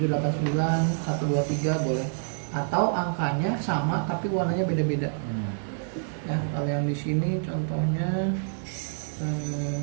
123 boleh, atau angkanya sama tapi warnanya beda-beda. Ya, kalau yang di sini contohnya 7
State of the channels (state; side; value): silent; left; digital silence